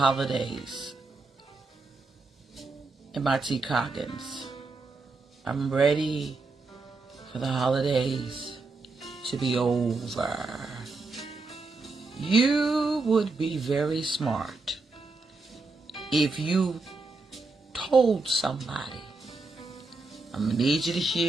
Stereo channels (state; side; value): quieter; left; 3.7 dB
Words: MIT Coggins. I'm ready for the holidays to be over. You would be very smart if you told somebody, I'm going to need you to